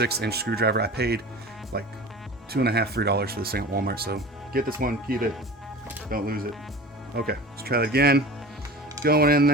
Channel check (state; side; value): normal; both; correlation 0.36